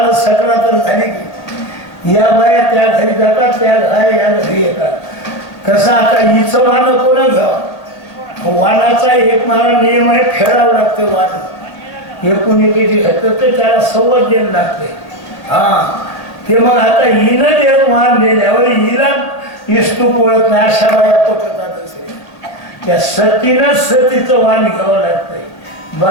सकरा तर झाली की या बाया त्या घरी जातात, त्या या घरी येतात. कसं आता हिचं वाण कोण घ्यावं? वाणाचा एक मला नियम आहे, फेडावं लागतं वाण. एकूण एकेची घातलं तर त्याला सवत द्यायला लागते. ते मग आता हिनं जे वाण दिल्यावर हिला इस्तू पोळत नाही अशा बाया पोटतात असे. त्या सतीनंच सतीचं वाण घ्यावं लागतंय.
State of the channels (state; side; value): late; right; 1.9 ms